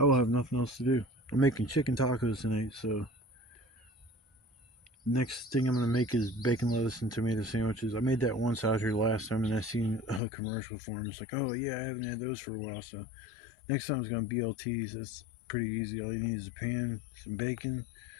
will have nothing else to do. I'm making chicken tacos tonight, so next thing I'm going to make is bacon, lettuce, and tomato sandwiches. I made that once out here last time, and I seen a commercial for them. It's like, oh yeah, I haven't had those for a while. So next time it's going to be BLTs. That's pretty easy. All you need is a pan, some bacon,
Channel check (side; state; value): right; drops out; at 10.2 s